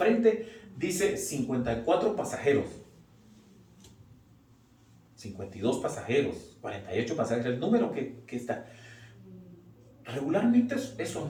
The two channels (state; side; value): identical; both; correlation 1.00